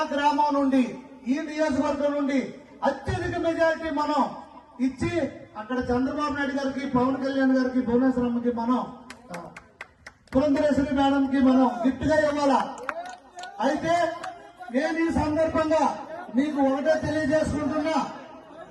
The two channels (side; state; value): both; identical; correlation 1.00